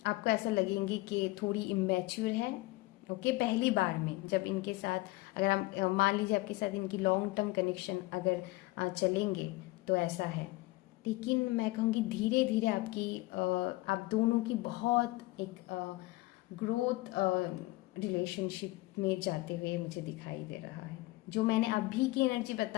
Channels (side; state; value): right; quieter; 20.4 dB